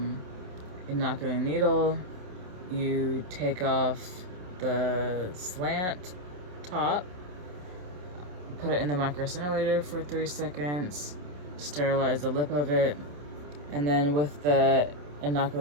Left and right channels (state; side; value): late; left; 27 ms